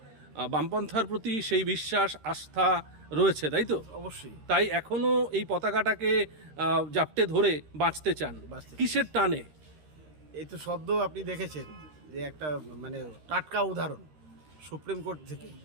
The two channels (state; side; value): late; left; 13 ms